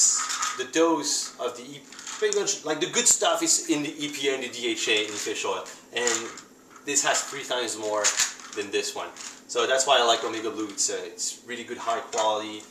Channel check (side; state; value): both; identical; correlation 1.00